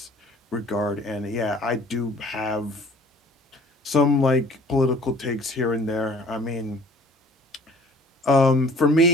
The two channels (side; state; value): both; normal; correlation 0.52